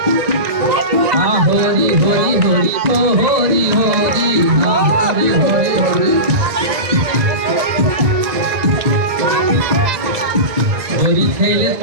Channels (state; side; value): late; left; 1.9 ms